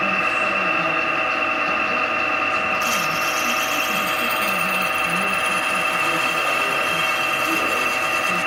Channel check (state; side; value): identical; both; correlation 1.00